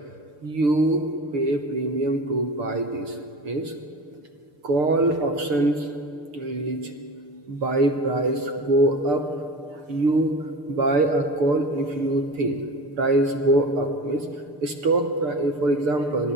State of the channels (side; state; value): left; late; 6.8 ms